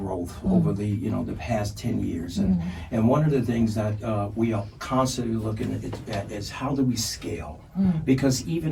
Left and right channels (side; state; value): both; identical; correlation 1.00